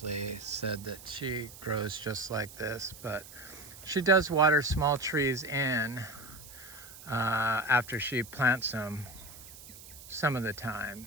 said that she grows just like this, but she does water small trees in after she plants them some of the time.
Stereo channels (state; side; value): noise; right; hiss, 17 dB below the sound